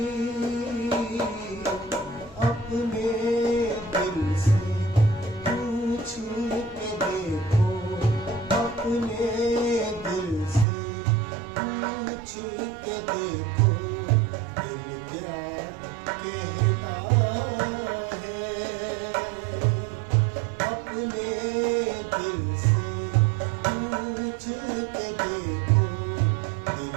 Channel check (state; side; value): drops out; left; at 10.7 s